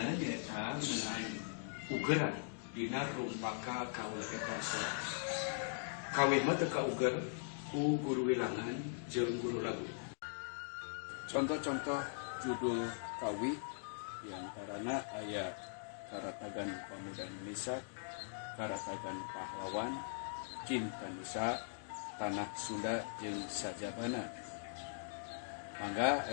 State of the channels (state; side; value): silent; right; digital silence